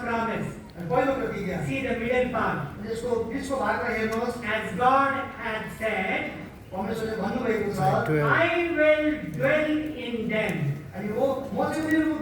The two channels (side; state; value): both; identical; correlation 1.00